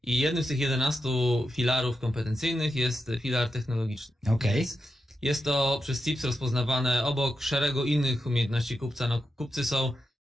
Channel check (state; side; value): normal; both; correlation 0.87